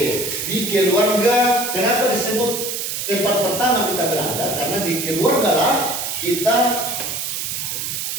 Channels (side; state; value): right; noise; hiss, 3 dB below the sound